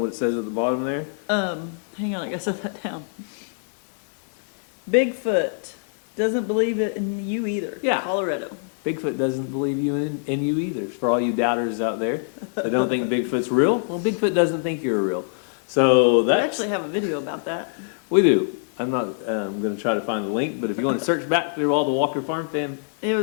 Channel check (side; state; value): right; silent; digital silence